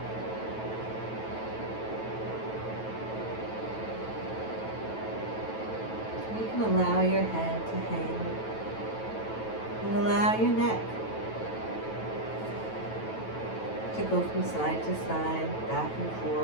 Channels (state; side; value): late; right; 9.2 ms